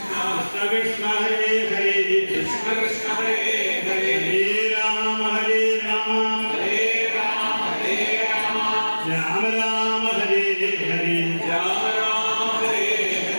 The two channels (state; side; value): inverted; both; correlation -1.00